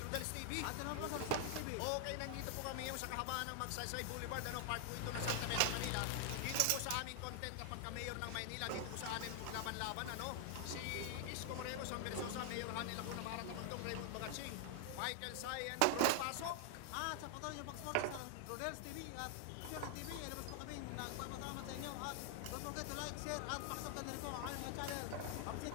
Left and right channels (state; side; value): different; both; correlation 0.00